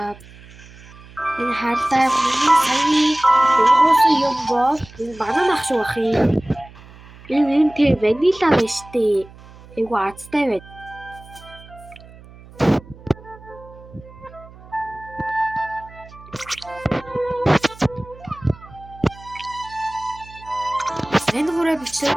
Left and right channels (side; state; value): right; noise; hum, 20 dB below the sound